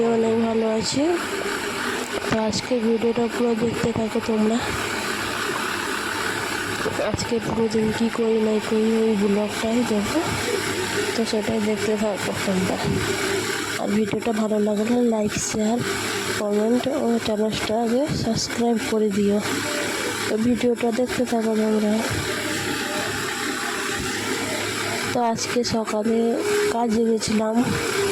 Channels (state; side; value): identical; both; correlation 1.00